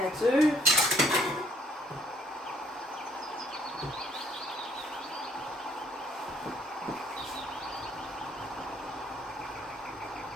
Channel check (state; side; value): normal; both; correlation 0.64